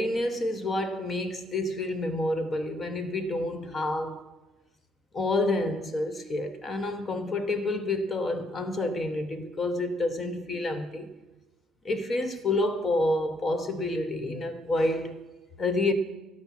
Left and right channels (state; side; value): normal; both; correlation 0.71